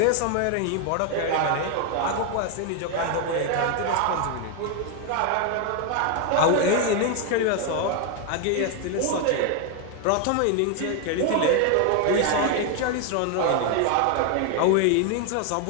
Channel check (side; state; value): both; different; correlation 0.01